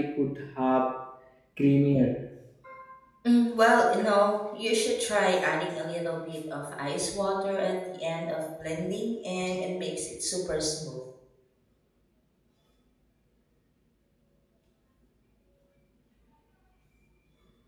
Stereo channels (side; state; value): both; identical; correlation 1.00